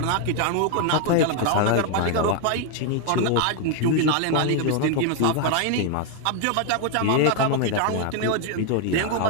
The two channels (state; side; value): different; both; correlation 0.00